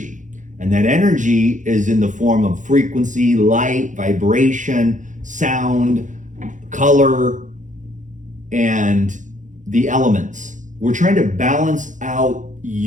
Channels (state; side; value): late; left; 0.36 ms